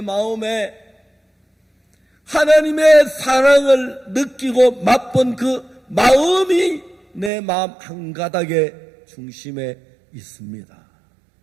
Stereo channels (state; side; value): drops out; left; at 7.3 s